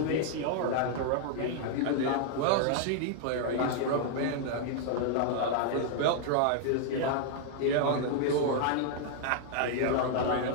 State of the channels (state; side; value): different; both; correlation -0.01